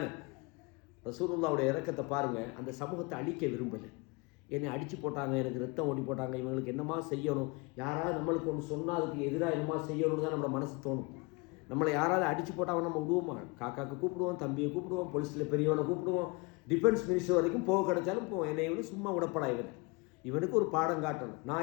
ரசூலுல்லாவுடைய இரக்கத்தை பாருங்கள். அந்த சமூகத்தை அழிக்க விரும்பலை. என்னை அடித்து போட்டாங்க, எனக்கு ரத்தம் ஓடி போட்டாங்க, இவங்களுக்கு என்னமா செய்யணும், யாராவது நம்மளுக்கு ஒன்று சொன்னால் அதுக்கு எதிராக என்னமா செய்யணும்னு தான் நம்மளோட மனசு தோணும். நம்மளை யாராவது அடித்து போட்டால் நம்ம விடுவோமா? காக்காக்கு கூப்பிடுவோம், தம்பியை கூப்பிடுவோம், போலீஸில் பெரியவனை கூப்பிடுவோம், டிஃபென்ஸ் மினிஸ்டர் வரைக்கும் போக கிடைச்சாலும் போவோம். என்னை இவனு சும்மா விடப்படா, இவனுக்கு ஒரு பாடம் காட்டணும்,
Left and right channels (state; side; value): quieter; right; 27.8 dB